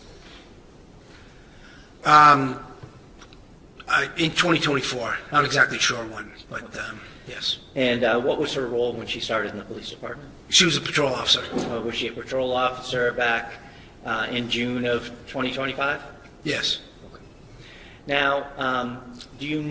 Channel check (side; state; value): both; identical; correlation 1.00